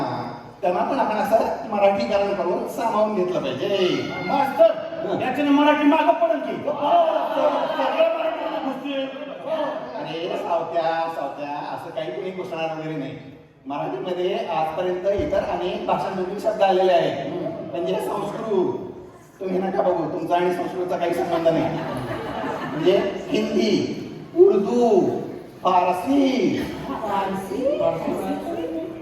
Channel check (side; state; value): both; identical; correlation 1.00